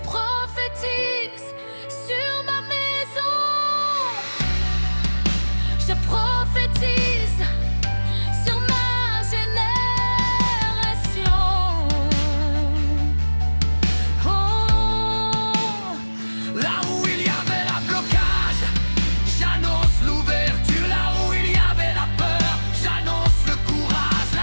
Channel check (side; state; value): both; inverted; correlation -1.00